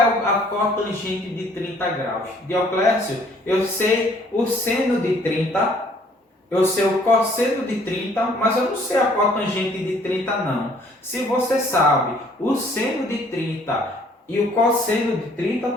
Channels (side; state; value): both; normal; correlation 0.60